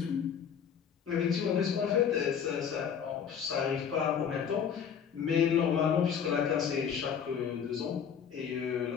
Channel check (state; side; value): quieter; right; 7.6 dB